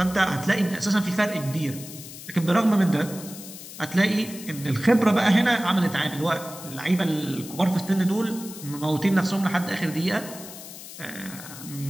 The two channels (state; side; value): noise; left; hiss, 14 dB below the sound